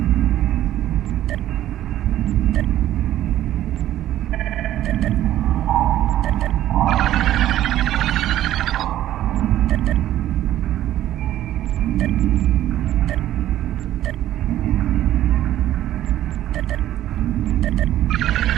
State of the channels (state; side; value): quieter; left; 12.9 dB